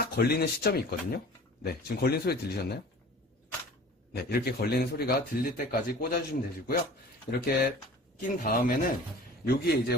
걸리는 시점이 있거든요. 네, 지금 걸린 소리 들리셨나요? 네, 이렇게 걸리는 소리가 들릴 때까지 꽂아주시면 되시고요. 이렇게 낀 다음에는 여기에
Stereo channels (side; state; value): both; normal; correlation 0.43